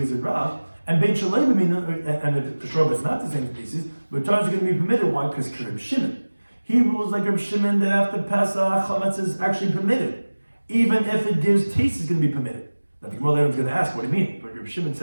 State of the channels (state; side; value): inverted; both; correlation -1.00